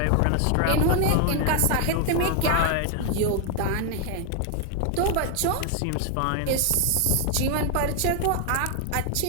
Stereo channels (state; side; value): different; both; correlation 0.00